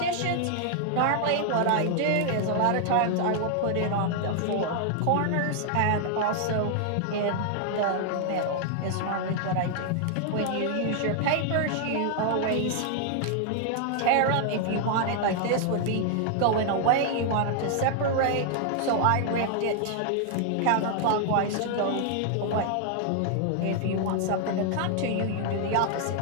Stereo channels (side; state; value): both; different; correlation 0.00